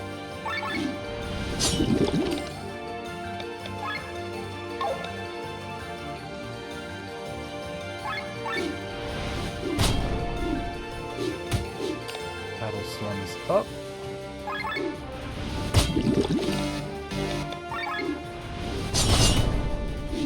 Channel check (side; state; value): both; identical; correlation 1.00